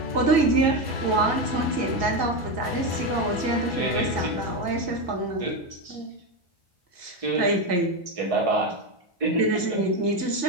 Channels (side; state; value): left; late; 1.8 ms